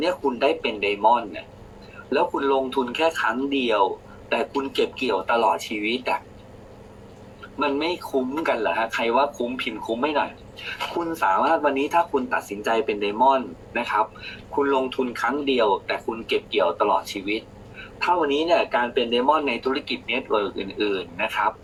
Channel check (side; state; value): both; identical; correlation 1.00